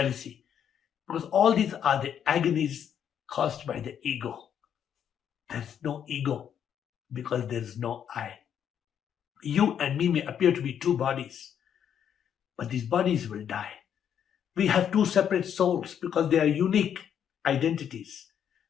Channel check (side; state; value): right; quieter; 8.8 dB